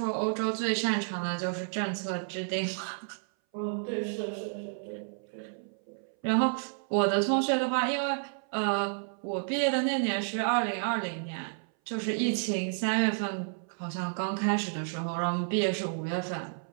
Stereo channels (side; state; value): left; silent; 57 dB below the other